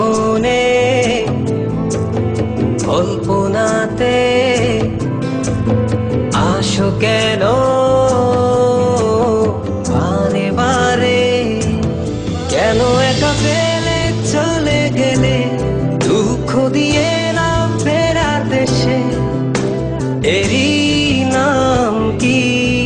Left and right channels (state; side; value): identical; both; correlation 1.00